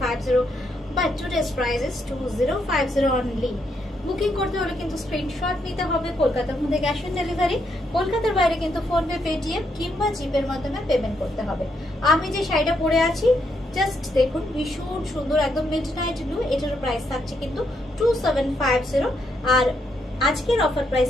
but today's price is 2050 only. Booking করতে হলে কিন্তু স্ক্রিনশট নিতে হবে। কলকাতার মধ্যে ক্যাশ অন ডেলিভারি, কলকাতার বাইরে কিন্তু ফোনপে, পেটিএম কিংবা জিপের মাধ্যমে পেমেন্ট করতে হবে। আমি যে শাড়িটা পরে আছি জাস্ট দেখুন, ভীষণ সুন্দর একদম মিডনাইট ব্লু। এটার প্রাইস থাকছে কিন্তু 2750, আর আজকের অফার প্রাইস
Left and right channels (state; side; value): normal; both; correlation 0.77